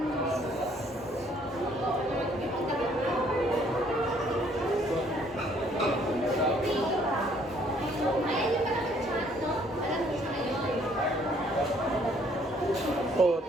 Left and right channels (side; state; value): both; normal; correlation 0.63